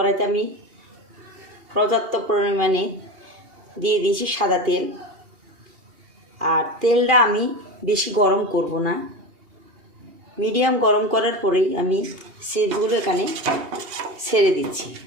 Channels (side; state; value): left; late; 2.8 ms